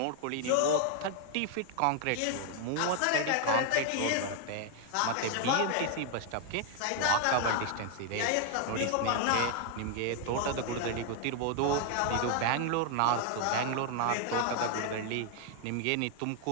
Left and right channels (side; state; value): both; different; correlation 0.00